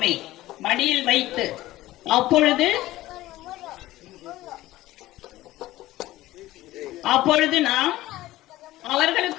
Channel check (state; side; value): quieter; right; 16.5 dB